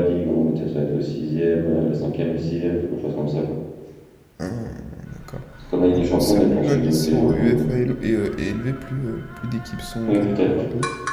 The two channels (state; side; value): identical; both; correlation 1.00